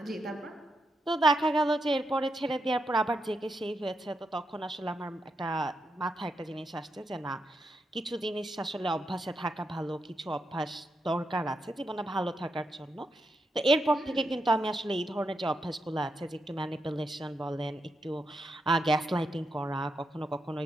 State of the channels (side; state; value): both; normal; correlation 0.83